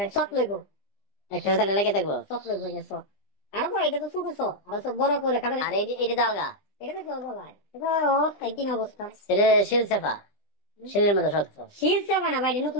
সত লইব একটা তাহলে লেগে দেখবো সত লইব যে সত আর বড় এটা তো ছোট সত আর সব বড় করে খাবে আর এটা দালগা এটা তো বড় ভাই এটা ও একই অবস্থা এটা শিল সেফা শিলের মতো শক্ত শিল সেবা না ভাই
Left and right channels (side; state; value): right; late; 20 ms